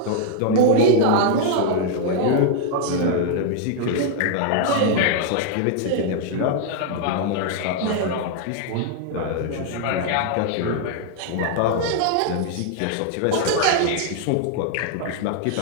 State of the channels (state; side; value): different; both; correlation 0.00